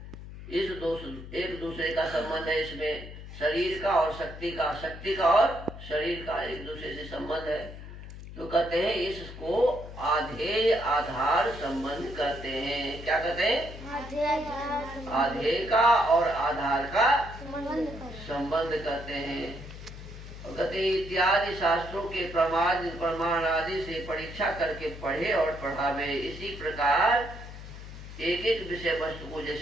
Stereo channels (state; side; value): noise; left; hum, 12 dB below the sound